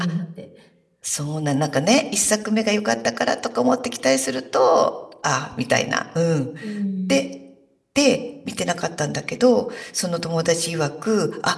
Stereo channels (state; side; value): identical; both; correlation 1.00